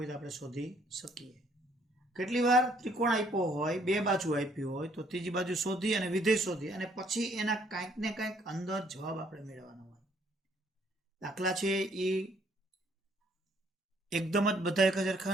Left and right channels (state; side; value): normal; both; correlation 0.65